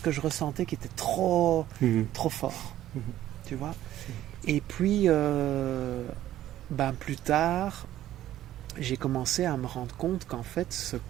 je ressentais qui était trop fort, tu vois. Et puis, plus tard, j'ai commencé à me rendre compte qu'en fait, ce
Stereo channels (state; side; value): quieter; left; 13.2 dB